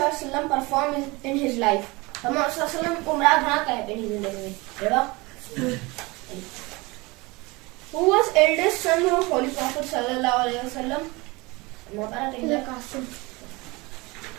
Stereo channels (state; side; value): quieter; left; 24.2 dB